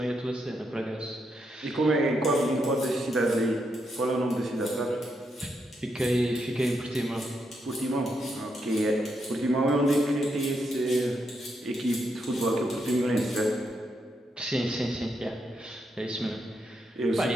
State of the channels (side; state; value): both; normal; correlation 0.81